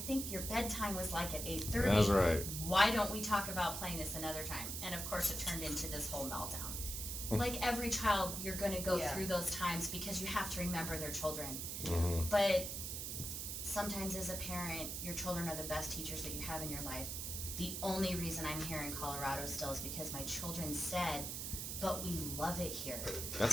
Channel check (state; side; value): noise; right; hiss, 4 dB below the sound